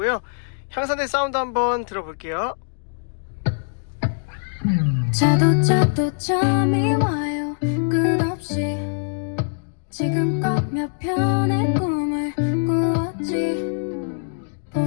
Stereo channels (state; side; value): silent; right; digital silence